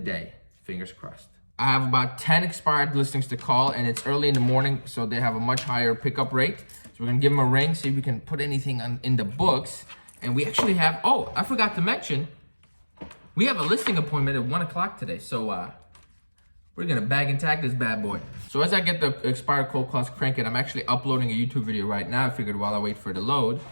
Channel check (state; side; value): inverted; both; correlation -1.00